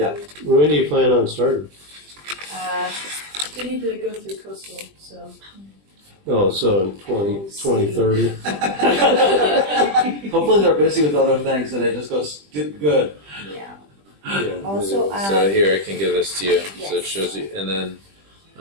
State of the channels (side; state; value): left; late; 20 ms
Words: When do you plan on starting? They need to go through coastal, so. Oh, so in 2030. Hopefully they're busy with other things and it just goes good. Yeah. Yeah, Also, So here, I can give this to you, so it Yes. shows you, and then